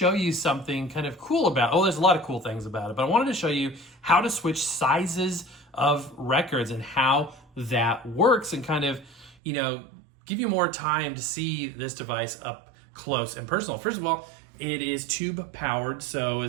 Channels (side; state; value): left; drops out; at 9.3 s